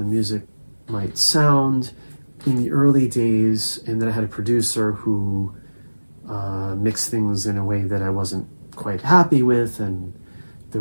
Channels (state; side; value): inverted; both; correlation -1.00